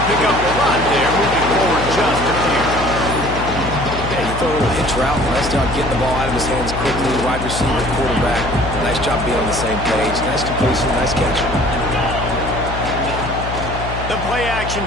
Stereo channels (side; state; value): left; noise; hum, 7 dB below the sound